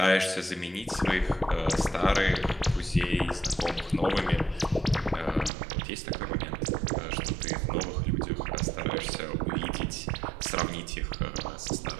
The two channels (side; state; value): left; drops out; at 5.5 s